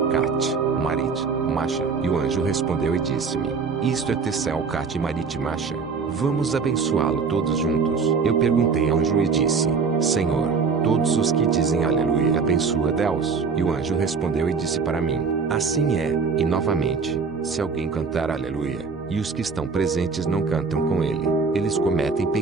Cat, Marit, Masha? E o anjo respondeu e disse-me: isto é Tessel, Cat, Marit, Masha. Vamos abençoá-lo todos juntos. Eu perguntei ao anjo e disse: Senhor, todos os que dizem aleluia abençoa Deus. E o anjo respondeu e disse para mim: assim é. E novamente, se alguém cantar aleluia, e os que estão presentes não cantam com ele. Eles cometem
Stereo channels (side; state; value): left; quieter; 5.1 dB